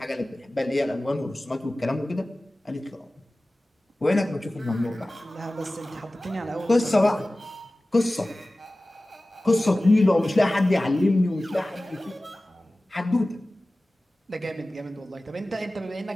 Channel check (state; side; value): normal; both; correlation 0.97